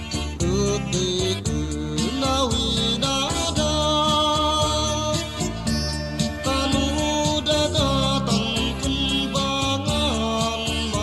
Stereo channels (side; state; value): both; identical; correlation 1.00